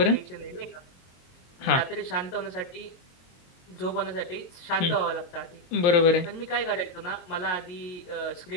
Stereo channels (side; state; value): right; late; 22 ms